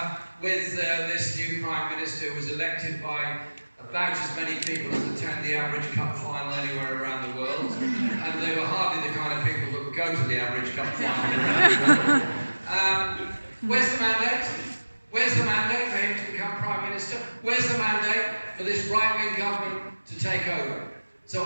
with this new Prime Minister who was elected by about as many people as attend the average cup final anywhere around the world, and they were hardly the kind of people that would go to the average cup final around the world. Where's the mandate? Where's the mandate for him to become Prime Minister? Where's the mandate for this right-wing government to take over? So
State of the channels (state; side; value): inverted; both; correlation -1.00